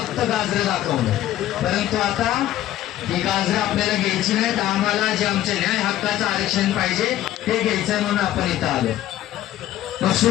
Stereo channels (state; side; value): quieter; right; 13.4 dB